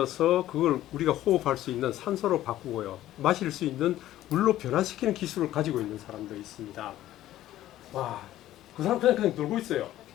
그걸 우리가 호흡할 수 있는 산소로 바꾸고요. 마실 수 있는 물로 변화시키는 기술을 가지고 있는 사람도 있습니다. 와, 그 사람 그냥 놀고 있어요.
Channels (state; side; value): quieter; right; 13.9 dB